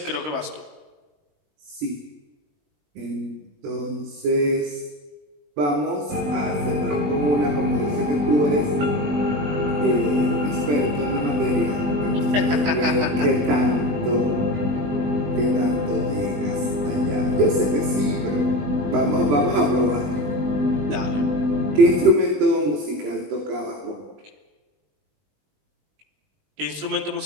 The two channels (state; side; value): late; left; 21 ms